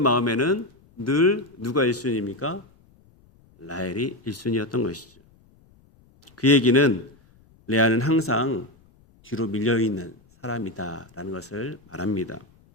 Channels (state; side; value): noise; left; rumble, 30 dB below the sound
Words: 늘 누가 1순위입니까? 라헬이 1순위였던 것이죠. 그 얘기는 레아는 항상 뒤로 밀려있는 사람이다라는 것을 말합니다.